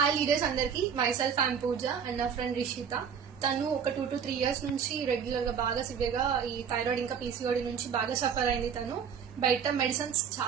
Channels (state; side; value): quieter; left; 7.3 dB